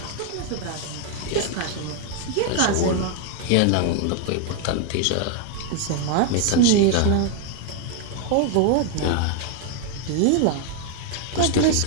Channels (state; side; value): different; both; correlation 0.01